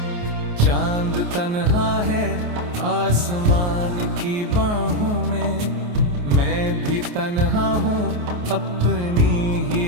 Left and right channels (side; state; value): left; late; 28 ms